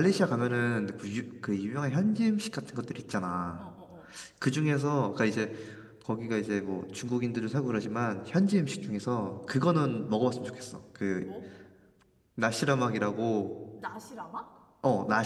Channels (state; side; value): identical; both; correlation 1.00